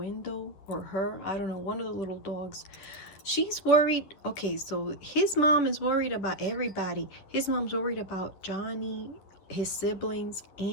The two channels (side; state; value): right; late; 11 ms